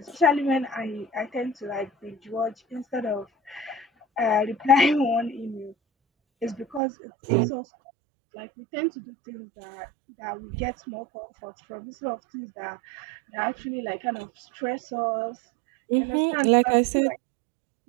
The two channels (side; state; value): left; drops out; at 6.8 s